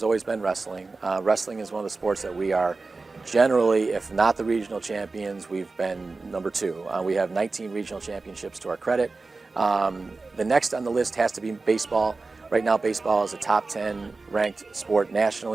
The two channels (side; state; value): left; quieter; 3.7 dB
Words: always been wrestling. Wrestling is one of the sports that we are generally, if not the regional champions, we've been number 2. We have 19 regional championships to our credit. The next on the list has to be baseball. Right now baseball is a top 10 ranked sport